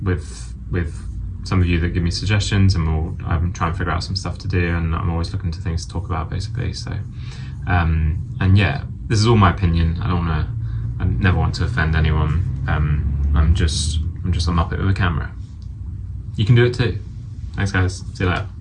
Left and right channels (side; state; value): both; identical; correlation 1.00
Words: with some of you that give me suggestions, and I'm trying to figure out some stuff to do, and I'm always looking to things to talk about, basically. So and yeah, this is all my opinion. I never want to offend anyone. I'm just a muppet with a camera. You can do it too. Thanks guys, see you later.